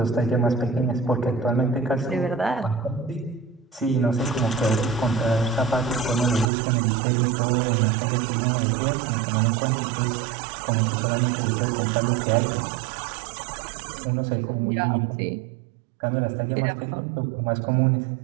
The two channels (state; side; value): drops out; left; at 6.5 s